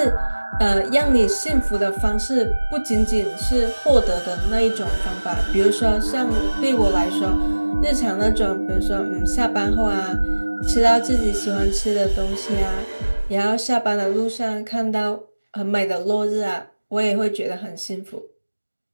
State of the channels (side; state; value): both; inverted; correlation -1.00